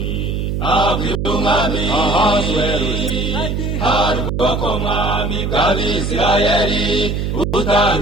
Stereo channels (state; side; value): noise; right; hum, 1 dB below the sound